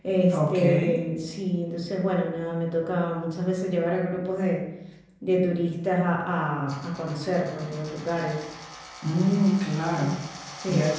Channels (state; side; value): identical; both; correlation 1.00